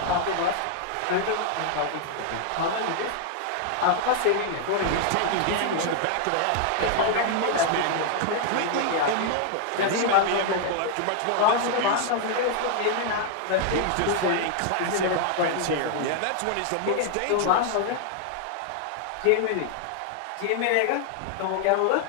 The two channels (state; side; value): different; both; correlation 0.00